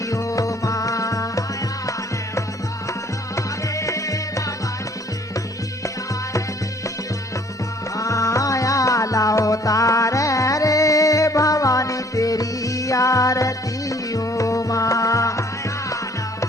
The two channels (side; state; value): both; normal; correlation 0.59